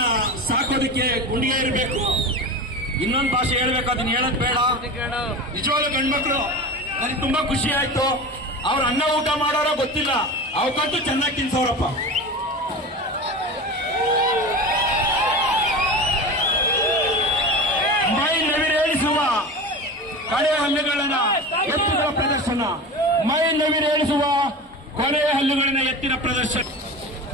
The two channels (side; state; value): both; normal; correlation 0.29